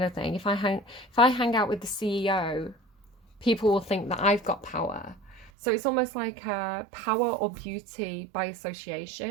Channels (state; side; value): drops out; left; at 5.5 s